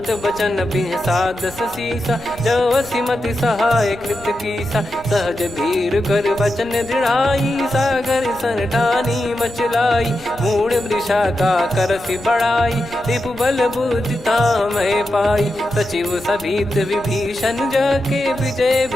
बचन बिहसा 10 सीसा, जवसि मति सहाय कृत कीसा, सहज भीर कर बचन दृढ़ाई, सागर सन ठानी मचलाई, मूड वृषा का करसि बढ़ाई, रिपु बल बुद्धि तामय पाई, सचिव सभीत विभीषण जाके, विजय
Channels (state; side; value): noise; right; rumble, 19 dB below the sound